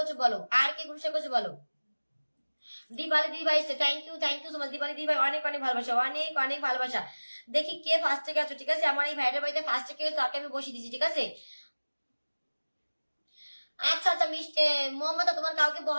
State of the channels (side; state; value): both; inverted; correlation -1.00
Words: বলো, বলো? দিবালি দিদি ভাই, thank you so much. Diwali দিদি ভাই অনেক অনেক ভালোবাসা, অনেক ভালোবাসা। দেখি কে ফার্স্টে গেছো, ঠিক আছে? আমার এই ভাইটার বাড়িতে ফার্স্টে কে তাকে আমি বসিয়ে দিচ্ছি, ঠিক আছে? আচ্ছা আচ্ছা মিষ্টি মমতা, তোমার কাউকে